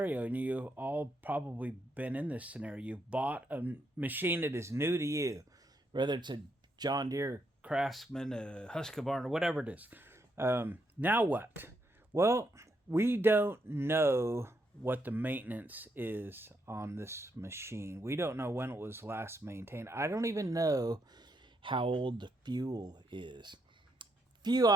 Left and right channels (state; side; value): normal; both; correlation 0.78